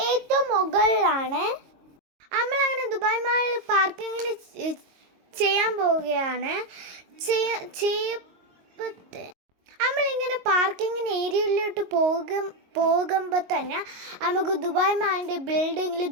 ഏറ്റവും മുകളിലാണ്. നമ്മളങ്ങനെ ദുബായ് മാളിൽ പാർക്കിങ്ങിന് ചെയ്യാൻ പോവുകയാണ്. നമ്മളിങ്ങനെ പാർക്കിങ്ങിന് ഏരിയയിലോട്ട് പോകുമ്പോൾ തന്നെ നമുക്ക് ദുബായ് മാളിൻ്റെ ബിൽഡിങ്ങിൽ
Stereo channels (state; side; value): late; left; 22 ms